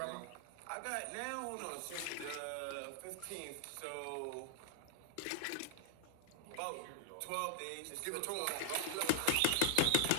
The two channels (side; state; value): both; different; correlation -0.01